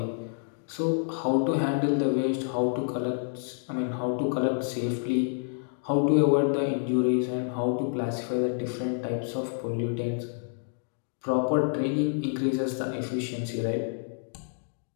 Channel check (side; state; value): right; silent; digital silence